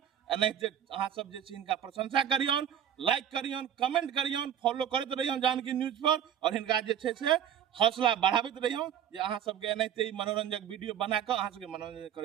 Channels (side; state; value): left; quieter; 9.7 dB